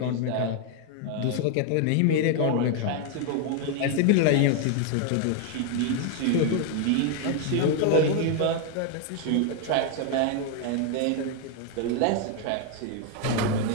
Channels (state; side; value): different; both; correlation 0.01